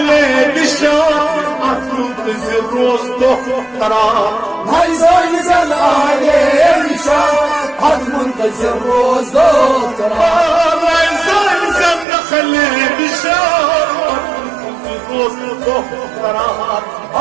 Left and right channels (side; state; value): left; drops out; at 12.1 s